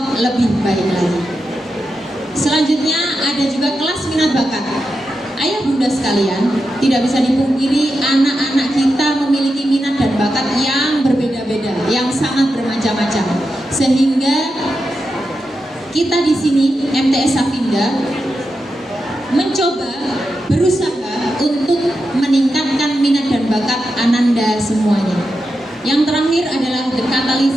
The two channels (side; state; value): both; normal; correlation 0.88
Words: lebih baik lagi. Selanjutnya ada juga kelas minat bakat. Ayah Bunda sekalian, tidak bisa dipungkiri anak-anak kita memiliki minat dan bakat yang berbeda-beda, yang sangat bermacam-macam. Sehingga kita di sini MTS Safinda mencoba berusaha untuk meningkatkan minat dan bakat Ananda semuanya. Yang terakhir adalah The